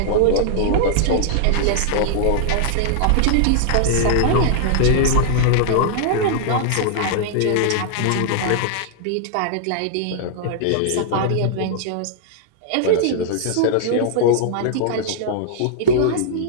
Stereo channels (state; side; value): different; both; correlation -0.01